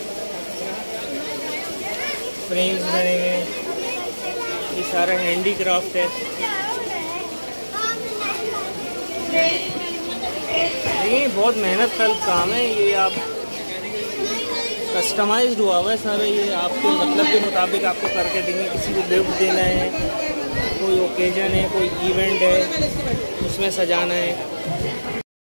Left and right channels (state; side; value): inverted; both; correlation -1.00